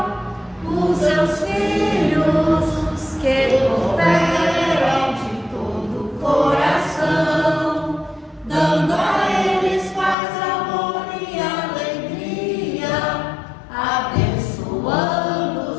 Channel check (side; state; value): right; drops out; at 10.2 s